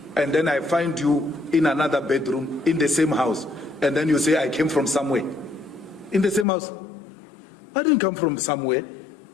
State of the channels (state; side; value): drops out; right; at 6.5 s